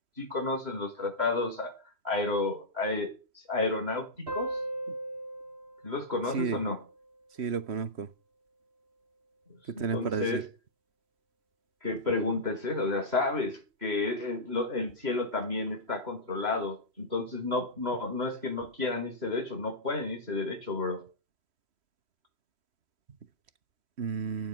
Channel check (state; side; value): late; left; 3.0 ms